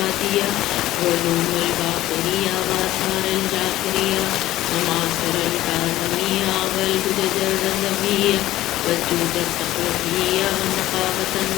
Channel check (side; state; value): right; quieter; 15.2 dB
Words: وعلوم الباقرية وآثار الجعفرية ومعاصر الكاظمية والهدج الرضوية والجود التقوية والنقابة